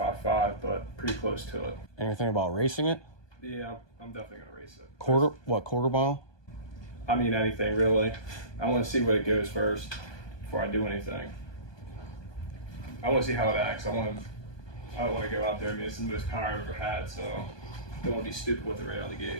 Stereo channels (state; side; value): late; right; 1.2 ms